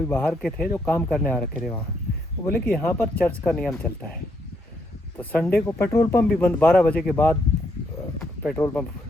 बाहर के थे जो काम करने आ रखे थे वहाँ, वो बोले कि यहाँ पर चर्च का नियम चलता है, तो संडे को पेट्रोल पंप भी बंद, 12 बजे के बाद पेट्रोल पंप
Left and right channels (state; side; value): normal; both; correlation 0.75